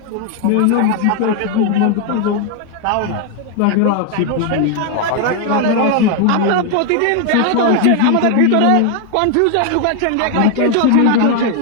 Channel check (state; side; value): different; both; correlation 0.01